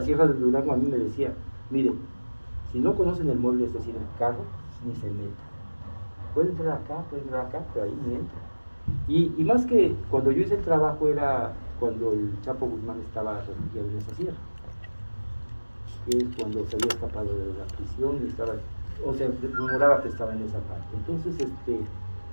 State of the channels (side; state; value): both; inverted; correlation -1.00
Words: Sierra de Durango a mí me decía, miren, si no conocen el mueble, es decir, el carro, ni se meta. Puede entrar acá, pero ahí ni entra. Y más que cuando yo hice el trabajo era cuando el Chapo Guzmán estaba refugiado en esa sierra, que es cuando se había escapado de la prisión y estaba, se rumoraba que estaba en esa parte. Entonces,